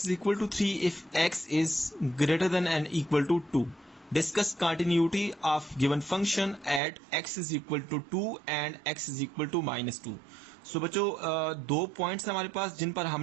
equal to 3 if x is greater than and equal to 2. Discuss continuity of given function at x is equal to 2 and x is equal to -2. So बच्चों दो पॉइंट्स हैं हमारे पास जिन पर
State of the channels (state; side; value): drops out; left; at 6.8 s